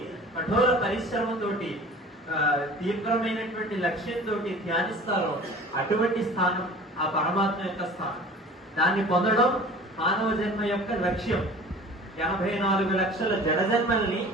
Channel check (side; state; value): both; normal; correlation 0.43